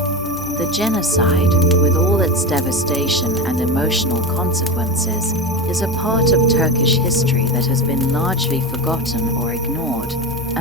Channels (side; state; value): both; normal; correlation 0.22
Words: The genocide, with all its devastation and emotional consequences, is a part of Turkish history that has been largely forgotten or ignored,